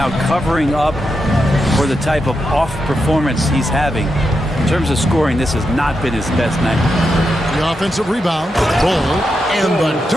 covering up for the type of off performance he's having. In terms of scoring, this has not been his best night. The offensive rebound, Bull, and the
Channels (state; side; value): normal; both; correlation 0.86